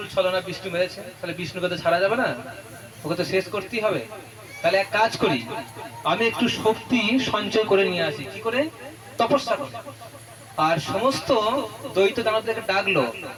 ছলনা বিষ্ণু মেরেছে, তাহলে বিষ্ণুকে তো ছাড়া যাবে না, ওকে তো শেষ করতেই হবে। তাহলে এক কাজ করি, আমি একটু শক্তি সঞ্চয় করে নিয়ে আসি। কি করে? তপস্যা করে। আর সমস্ত দ্বৈত দানবদেরকে ডাকলো,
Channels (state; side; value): identical; both; correlation 1.00